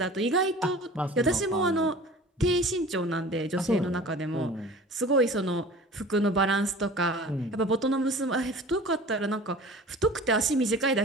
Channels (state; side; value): normal; both; correlation 0.42